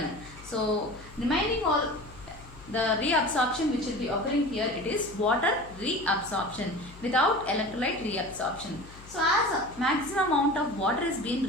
So remaining all the reabsorption which will be occurring here, it is water reabsorption without electrolyte reabsorption. So as a maximum amount of water is being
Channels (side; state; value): left; noise; hum, 19 dB below the sound